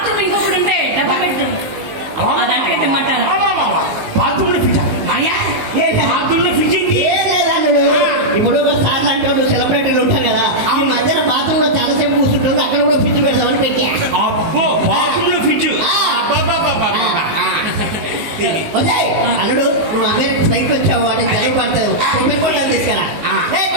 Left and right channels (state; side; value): late; left; 19 ms